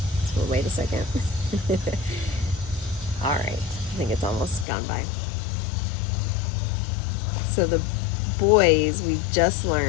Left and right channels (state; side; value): drops out; right; at 4.7 s